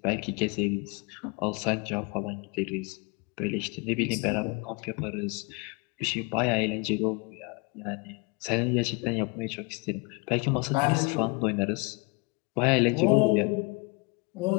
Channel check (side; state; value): right; quieter; 29.1 dB